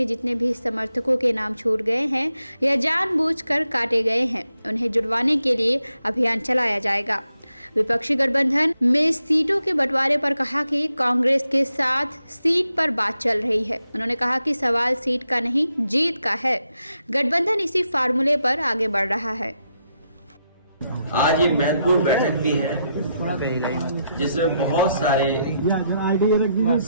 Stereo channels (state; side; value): inverted; both; correlation -0.82